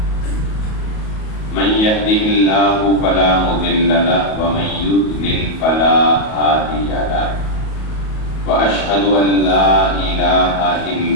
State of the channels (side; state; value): right; late; 37 ms